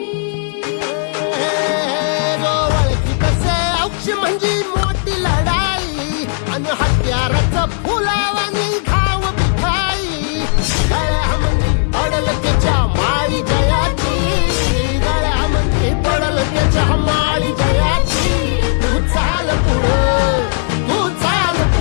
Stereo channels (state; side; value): silent; right; digital silence